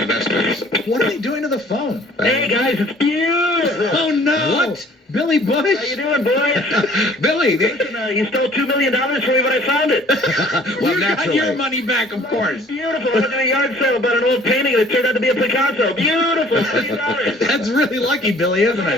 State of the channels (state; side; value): normal; both; correlation 0.53